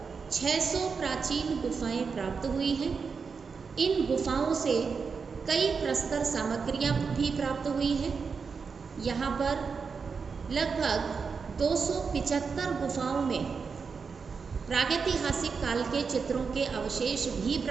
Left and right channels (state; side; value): quieter; left; 5.4 dB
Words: 600 प्राचीन गुफाएं प्राप्त हुई हैं। इन गुफाओं से कई प्रस्तर सामग्रियां भी प्राप्त हुई हैं। यहाँ पर लगभग 275 गुफाओं में प्रागैतिहासिक काल के चित्रों के अवशेष भी